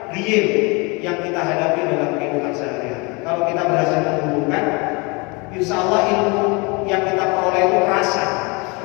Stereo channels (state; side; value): quieter; right; 28.7 dB